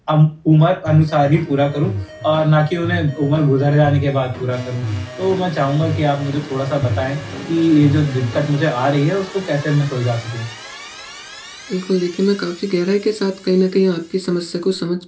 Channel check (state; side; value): identical; both; correlation 1.00